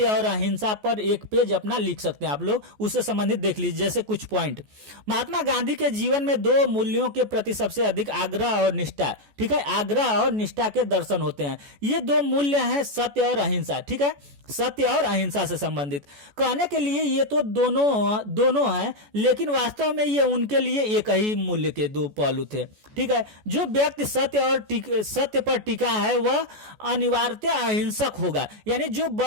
और अहिंसा पर एक पेज अपना लिख सकते हैं आप लोग, उससे संबंधित देख लीजिए। जैसे कुछ पॉइंट, महात्मा गांधी के जीवन में 2 मूल्यों के प्रति सबसे अधिक आग्रह और निष्ठा। ठीक है, आग्रह और निष्ठा के दर्शन होते हैं। ये 2 मूल्य हैं, सत्य और अहिंसा। ठीक है, सत्य और अहिंसा से संबंधित। कहने के लिए ये तो दोनों हैं, लेकिन वास्तव में ये उनके लिए एक ही मूल्य के 2 पहलू थे। ठीक है, जो व्यक्ति सत्य पर टिका है वह अनिवार्यतः अहिंसक होगा। यानी जो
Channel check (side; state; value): left; late; 14 ms